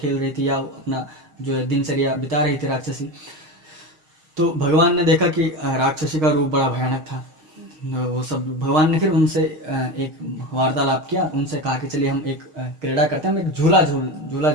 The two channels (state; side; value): late; left; 6.4 ms